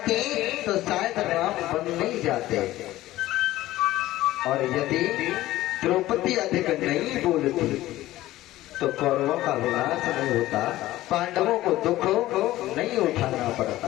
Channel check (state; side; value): quieter; right; 15.9 dB